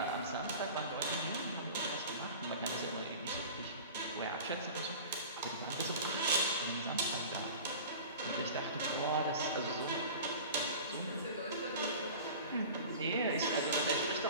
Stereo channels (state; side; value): inverted; both; correlation -0.37